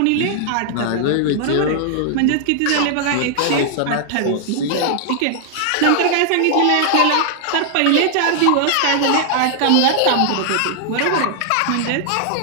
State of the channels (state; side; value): different; both; correlation -0.01